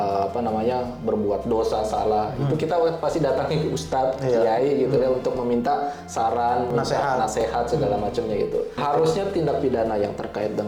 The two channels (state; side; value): identical; both; correlation 1.00